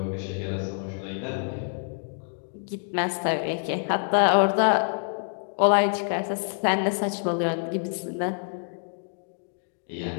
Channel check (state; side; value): silent; right; 60 dB below the other